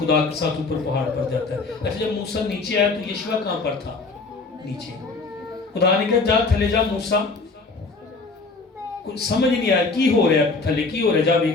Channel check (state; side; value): quieter; right; 3.8 dB